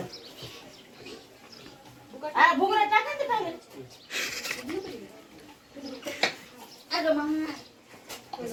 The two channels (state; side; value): identical; both; correlation 1.00